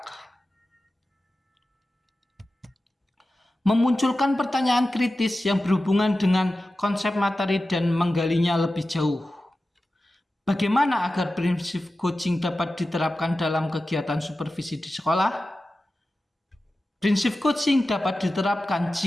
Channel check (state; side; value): normal; both; correlation 0.94